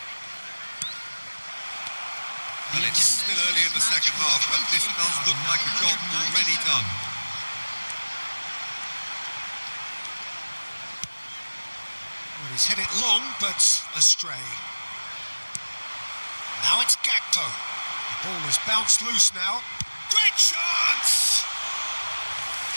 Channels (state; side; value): inverted; both; correlation -1.00